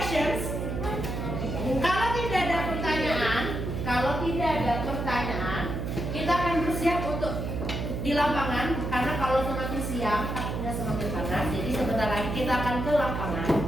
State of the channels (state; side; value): noise; right; hum, 3 dB below the sound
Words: Kalau tidak ada pertanyaan, kita akan bersiap untuk di lapangan. Karena kalau semakin siang, takutnya semakin panas. Jadi sebentar lagi kita akan ke